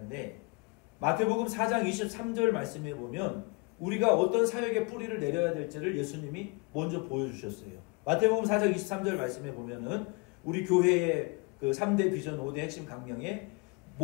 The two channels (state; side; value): quieter; right; 28.1 dB